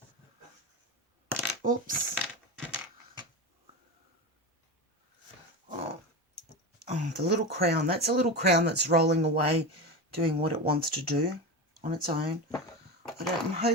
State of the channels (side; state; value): both; normal; correlation 0.22